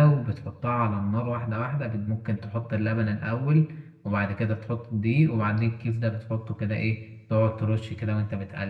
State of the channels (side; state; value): both; identical; correlation 1.00